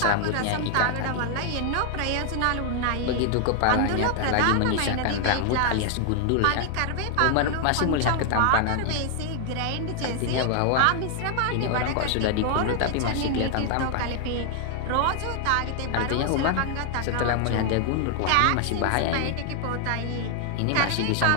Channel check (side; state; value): both; different; correlation 0.00